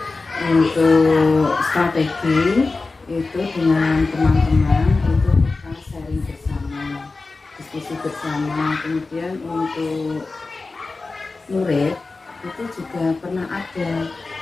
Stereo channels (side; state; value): right; quieter; 3.7 dB